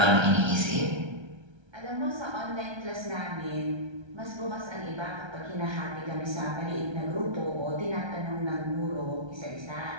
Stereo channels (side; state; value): left; late; 1.3 ms